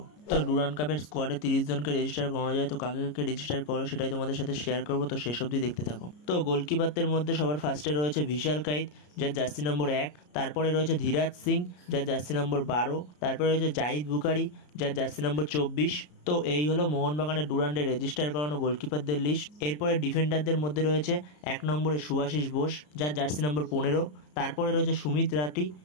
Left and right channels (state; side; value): late; right; 33 ms